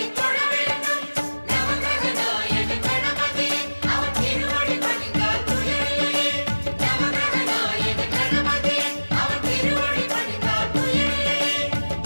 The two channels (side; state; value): both; inverted; correlation -1.00